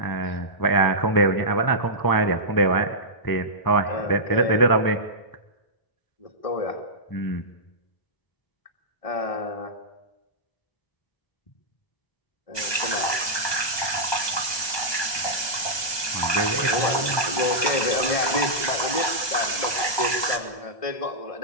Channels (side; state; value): right; late; 1.2 ms